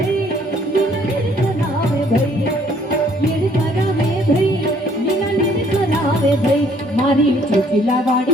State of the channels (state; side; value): normal; both; correlation 0.62